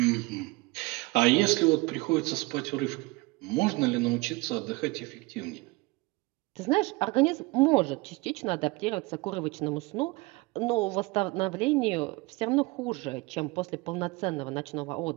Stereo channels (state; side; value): quieter; left; 23.9 dB